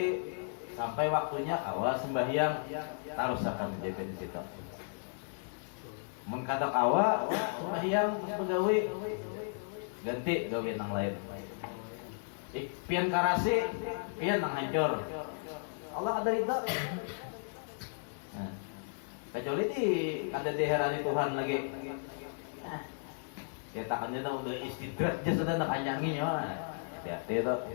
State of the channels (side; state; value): right; silent; digital silence